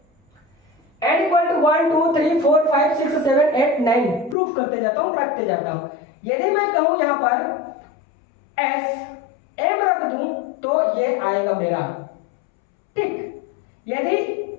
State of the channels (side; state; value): right; drops out; at 4.4 s